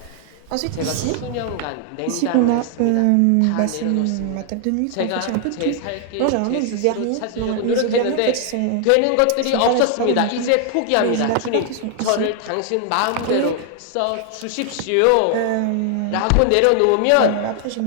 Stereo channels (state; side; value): different; both; correlation 0.00